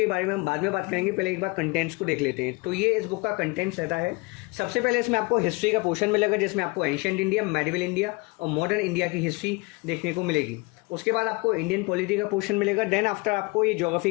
बारे में हम बाद में बात करेंगे, पहले एक बार कंटेंट्स को देख लेते हैं। तो ये इस बुक का कंटेंट्स रहता है। सबसे पहले इसमें आपको हिस्ट्री का पोर्शन मिलेगा, जिसमें आपको एंशिएंट इंडिया, मेडिवल इंडिया और मॉडर्न इंडिया की हिस्ट्री देखने को मिलेगी। उसके बाद आपको इंडियन पॉलिटी का पोर्शन मिलेगा। देन आफ्टर आपको ये ज्योग्राफी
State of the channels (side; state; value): right; quieter; 26.1 dB